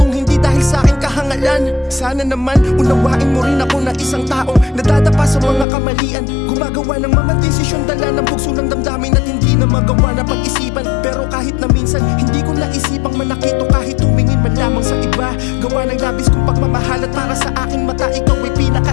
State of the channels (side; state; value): right; drops out; at 5.7 s